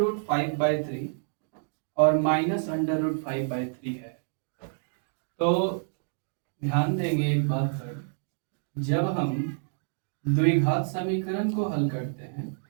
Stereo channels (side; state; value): left; silent; digital silence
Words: 5/3 और माइनस अंडर रूट 5/3 है। तो ध्यान देंगे एक बात पर, जब हम द्विघात समीकरण को हल करते हैं